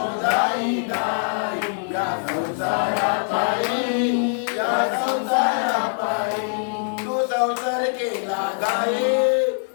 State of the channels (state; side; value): silent; right; digital silence